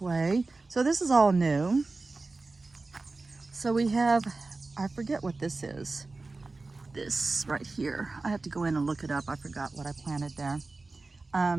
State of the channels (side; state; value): left; quieter; 3.5 dB